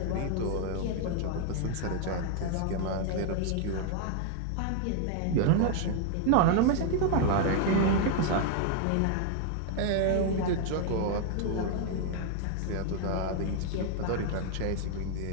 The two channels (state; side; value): different; both; correlation 0.00